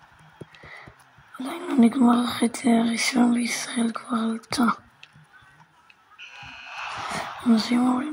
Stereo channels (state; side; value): identical; both; correlation 1.00